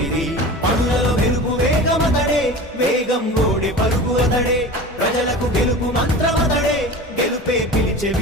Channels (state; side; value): normal; both; correlation 0.34